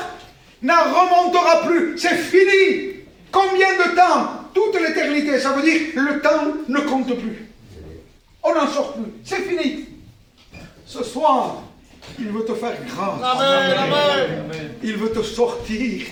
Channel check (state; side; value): identical; both; correlation 1.00